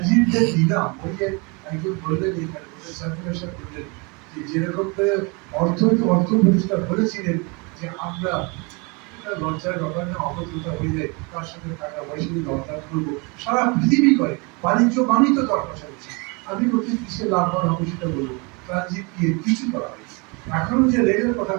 দিলাম, ওই যে একজন বললেন এখানে সার্কুলেশন বললেন যে যেরকম করে অর্থ উপদেষ্টা বলেছিলেন যে আমরা, এটা লজ্জার ব্যাপার না, অবদ্ধতা হয়ে যায়, তার সাথে টাকা পয়সা দিয়ে দরকার করবো, সারা পৃথিবী করে বাণিজ্য বাণিজ্য দর কষাকষি। আমি বলছি কিসে লাভবান হবে সেটা বলবো, ট্রানজিট দিয়ে কিছু করা হয়েছে। এখনো যে রেলের কথা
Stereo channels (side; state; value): left; quieter; 29.9 dB